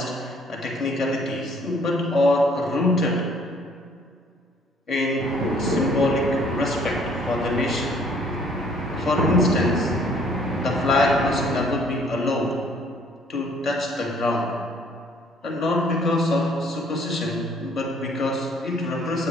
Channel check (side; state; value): both; normal; correlation 0.60